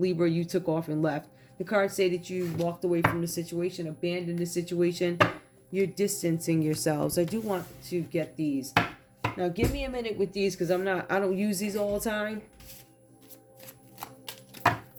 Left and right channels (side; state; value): both; identical; correlation 1.00